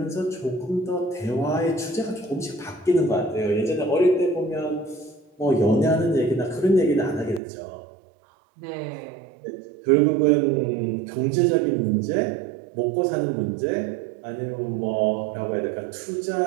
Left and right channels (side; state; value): left; drops out; at 7.4 s